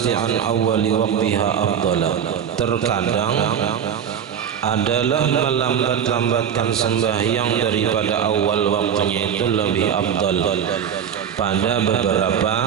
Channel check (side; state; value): left; quieter; 8.4 dB